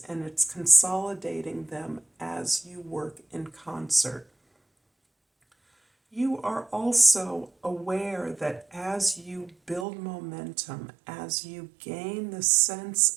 and it's consolidating them as you work in concert. You are also aware that as you build momentum, as you gain the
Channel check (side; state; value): left; drops out; at 9.9 s